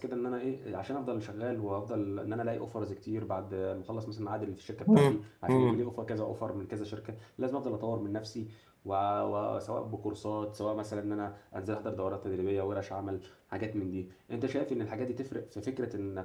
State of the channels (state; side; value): identical; both; correlation 1.00